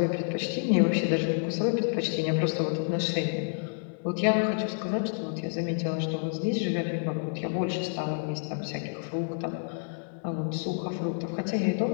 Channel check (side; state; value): right; silent; digital silence